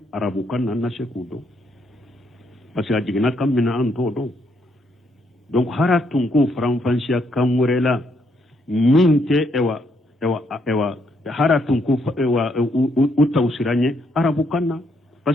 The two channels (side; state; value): both; normal; correlation 0.74